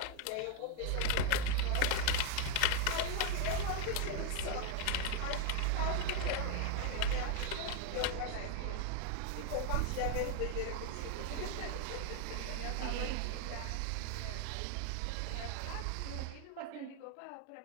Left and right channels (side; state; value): both; different; correlation 0.01